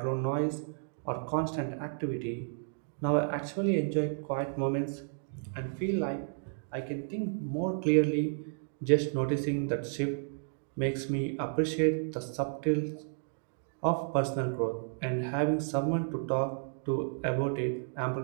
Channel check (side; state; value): left; silent; digital silence